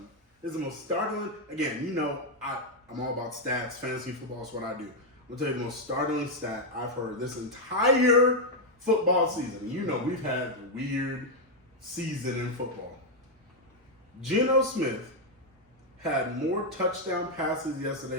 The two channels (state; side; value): normal; both; correlation 0.01